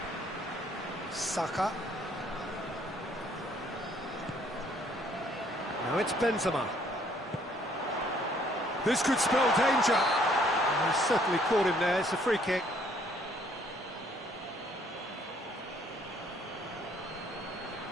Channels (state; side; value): normal; both; correlation 0.63